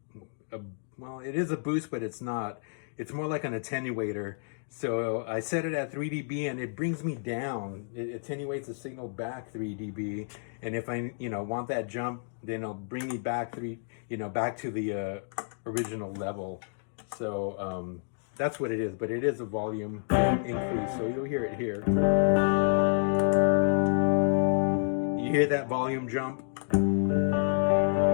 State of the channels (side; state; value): right; silent; digital silence